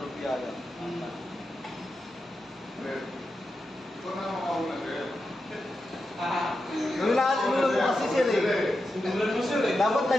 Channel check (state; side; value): normal; both; correlation 0.88